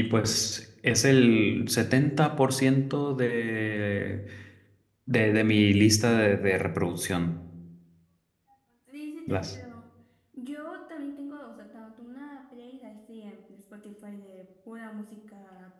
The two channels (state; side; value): identical; both; correlation 1.00